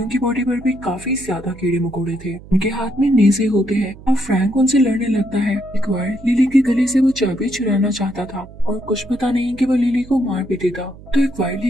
की बॉडी पर भी काफी ज्यादा कीड़े मकोड़े थे। उनके हाथ में नेज़े होते हैं और फ्रैंक उनसे लड़ने लगता है। एक्वायर लिली के गले से वो चाबी चुराना चाहता था और कुछ पता नहीं कि वो लिली को मार भी देता। तो एक्वायर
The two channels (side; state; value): right; noise; hum, 19 dB below the sound